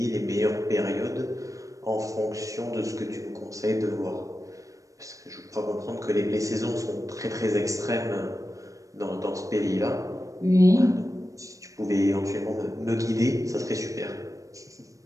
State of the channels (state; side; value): late; left; 0.16 ms